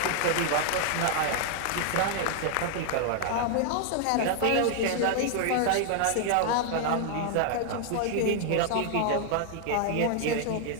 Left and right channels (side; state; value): both; different; correlation 0.00